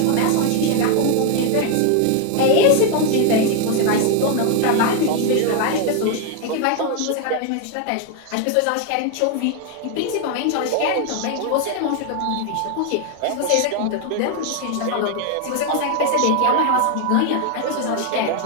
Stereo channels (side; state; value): both; different; correlation 0.01